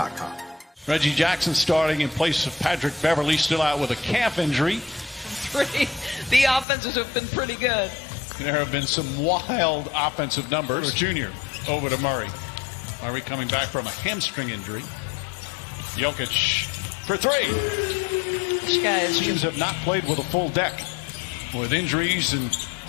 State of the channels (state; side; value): drops out; right; at 6.7 s